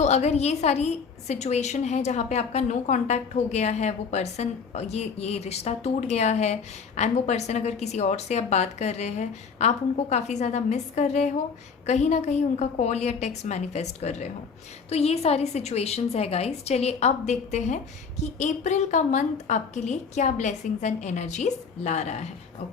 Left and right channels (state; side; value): quieter; right; 5.6 dB